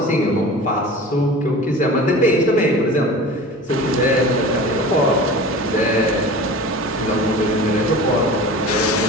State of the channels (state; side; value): normal; both; correlation 0.37